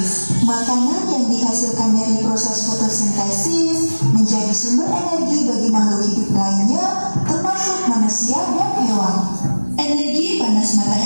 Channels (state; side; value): inverted; both; correlation -1.00